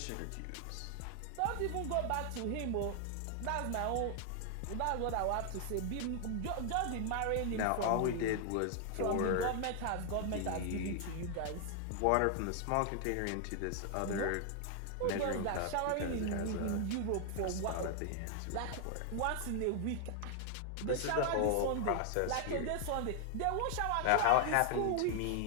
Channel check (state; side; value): different; both; correlation 0.00